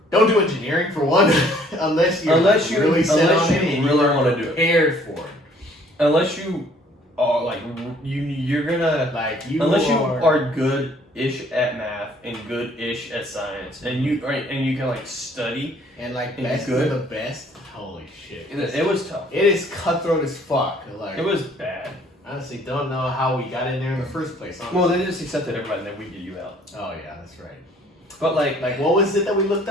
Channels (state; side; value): normal; both; correlation 0.59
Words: don't do engineering for one, unless you really want to do it. Prepared for it. Unless you are like you're gonna like you unless you are good-ish at math and good-ish at science, and you can like study and like and best good. of the best. Holy shit! It was tough. It is cutthroat as fuck. Like it was bad. Honestly, don't know how we got in there in the first place. Honestly. Well, they just accepted everybody and then we get you out. Oh yeah, that's right. But like what was it that we looked